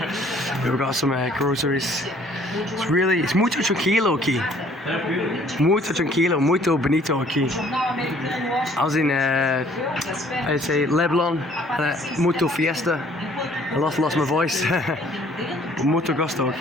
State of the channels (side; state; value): both; normal; correlation 0.58